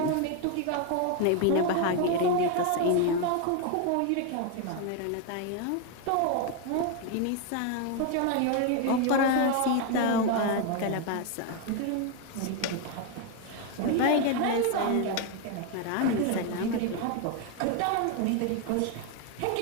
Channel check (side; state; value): both; different; correlation 0.01